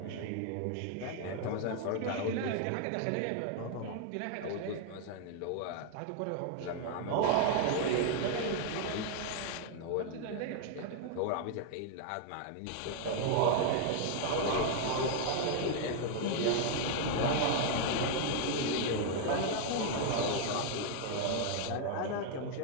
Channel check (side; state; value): both; different; correlation 0.00